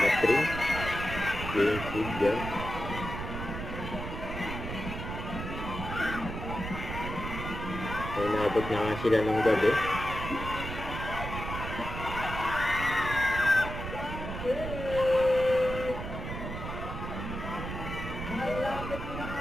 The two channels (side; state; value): right; noise; rumble, 6 dB below the sound